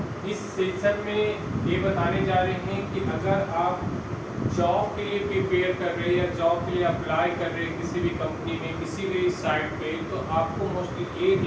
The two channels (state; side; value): identical; both; correlation 1.00